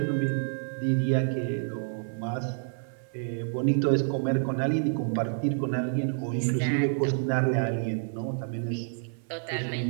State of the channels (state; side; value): silent; left; 57 dB below the other